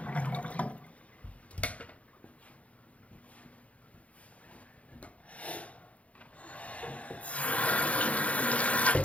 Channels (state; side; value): late; right; 0.065 ms